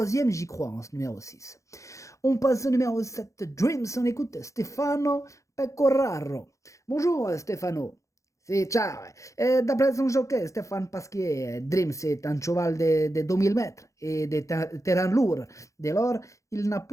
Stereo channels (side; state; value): right; late; 0.15 ms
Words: j'y crois, hein, ce numéro 6. On passe au numéro 7, Dreams. On écoute Stefano Pecoraro. Bonjour Stefano. Sì, ciao. D'après son jockey, Stéphane Pasquier, Dream, c'est un cheval de 2000 mètres et de terrain lourd. Dès lors, il n'a